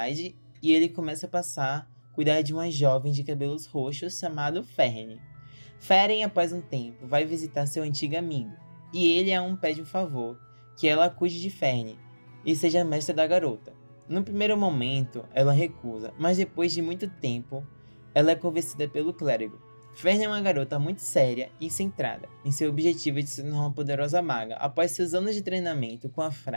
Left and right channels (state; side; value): inverted; both; correlation -1.00